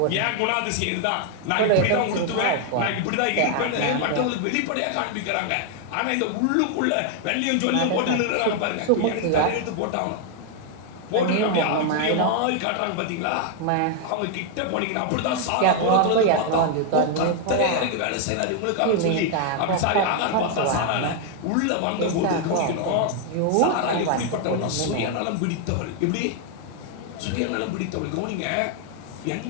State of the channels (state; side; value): different; both; correlation 0.00